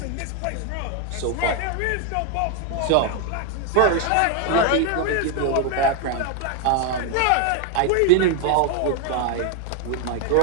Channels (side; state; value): both; different; correlation 0.01